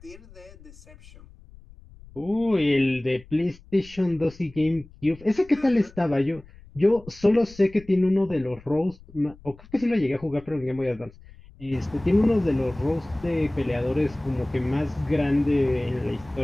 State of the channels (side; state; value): left; noise; rumble, 22 dB below the sound